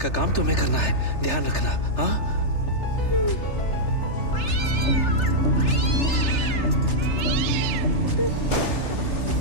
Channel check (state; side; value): late; right; 3.3 ms